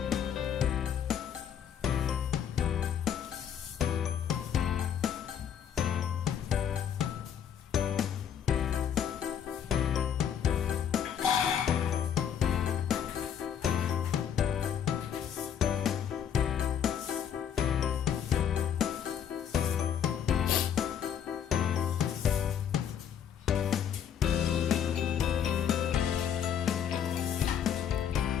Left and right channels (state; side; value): quieter; right; 8.7 dB